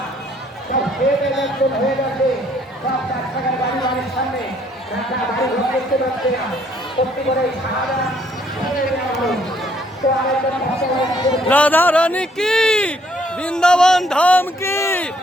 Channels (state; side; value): normal; both; correlation 0.66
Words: সব হয়ে গেছে, সব 4 টাকার বাড়ি বাড়ির সামনে বাড়ি ঘর করতে পারছে না। সত্যি করে রাধা রানী কি, বৃন্দাবন ধাম কি,